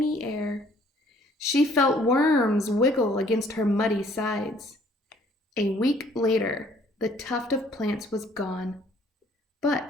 air. She felt worms wiggle against her muddy sides. A week later, the tuft of plants was gone.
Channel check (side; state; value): both; normal; correlation 0.60